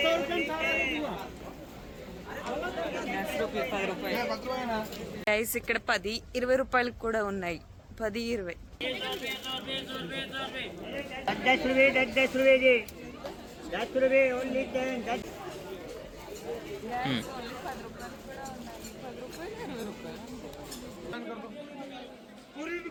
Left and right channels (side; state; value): both; identical; correlation 1.00